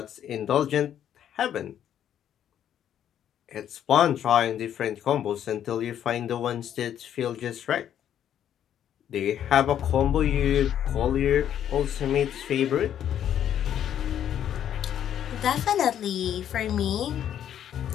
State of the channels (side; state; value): right; quieter; 10.1 dB